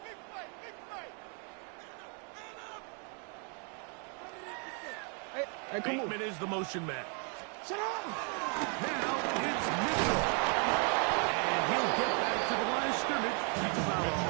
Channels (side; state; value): left; quieter; 39.0 dB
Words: Bateman is the motion man. Shut up! Now it's Mitchell. And he'll get back to the line of scrimmage.